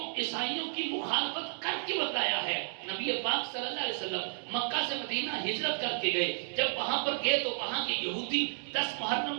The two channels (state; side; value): silent; left; 56 dB below the other